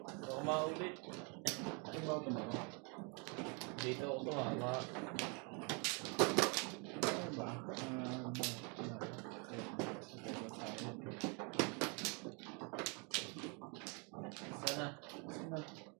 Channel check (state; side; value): quieter; left; 34.2 dB